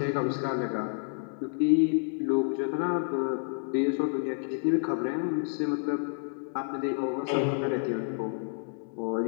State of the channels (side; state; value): right; silent; 58 dB below the other